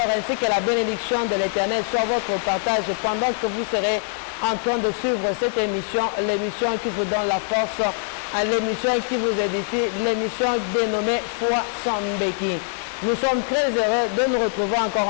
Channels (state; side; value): silent; right; digital silence